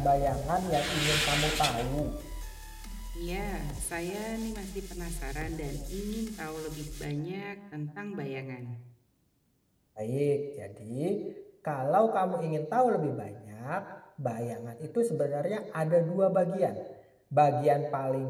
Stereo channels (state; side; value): identical; both; correlation 1.00